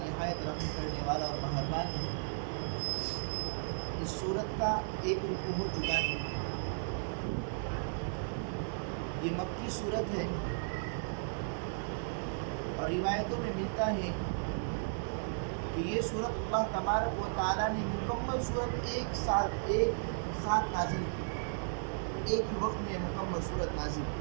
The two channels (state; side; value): silent; left; 54 dB below the other